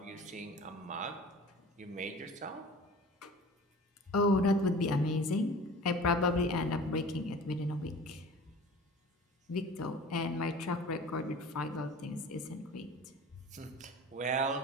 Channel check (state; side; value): normal; both; correlation 0.41